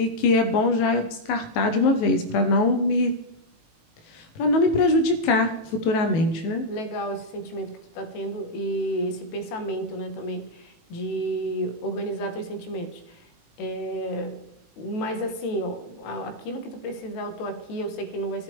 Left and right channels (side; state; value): right; late; 18 ms